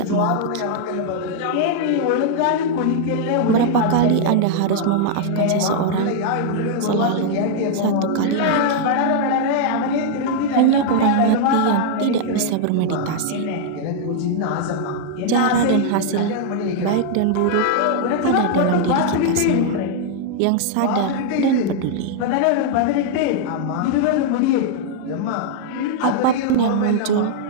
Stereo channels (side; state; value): both; different; correlation -0.01